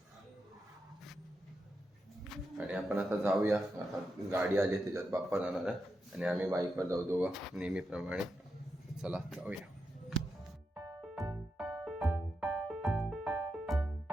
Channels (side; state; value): both; normal; correlation 0.86